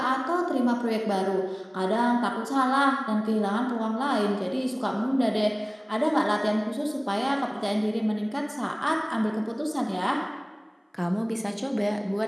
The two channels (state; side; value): identical; both; correlation 1.00